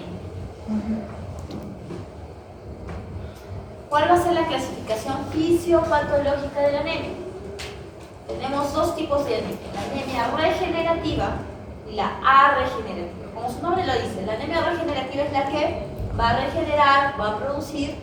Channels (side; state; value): both; identical; correlation 1.00